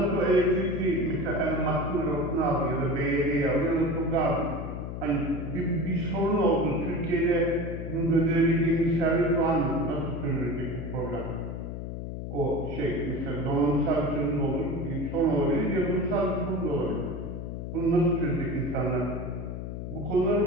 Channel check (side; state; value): left; noise; hum, 6 dB below the sound